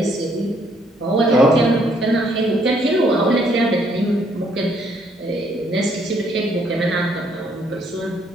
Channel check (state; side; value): normal; both; correlation 0.68